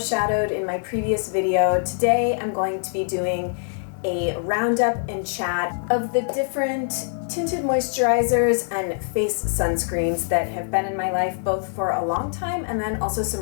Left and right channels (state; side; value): silent; right; digital silence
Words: in my previous video, today I'm going to be doing a roundup and chat of the different tinted moisturizers and face sunscreens that have been in my life both for a long time and then also